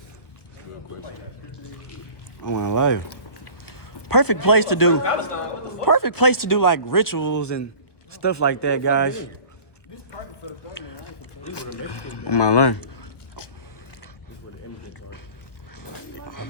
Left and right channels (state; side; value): late; right; 1.2 ms